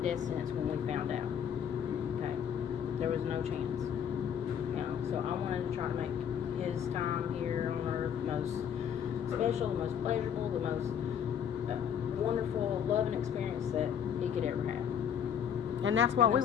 sentence when we found out. Okay. There was no chance. So I wanted to try to make his time here on earth the most special, the most pleasurable, the most wonderful, loving experience that he could ever have. And that's what And we the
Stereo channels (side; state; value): right; quieter; 8.4 dB